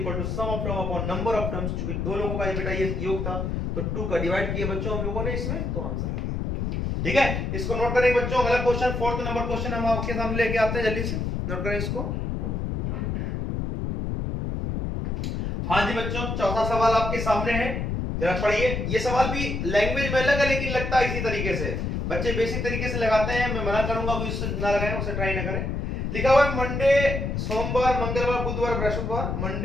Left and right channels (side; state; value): left; noise; rumble, 2 dB below the sound